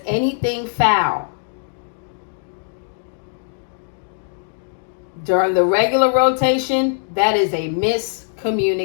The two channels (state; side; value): silent; right; 63 dB below the other